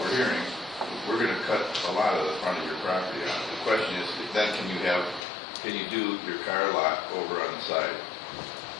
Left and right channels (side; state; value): right; drops out; at 5.2 s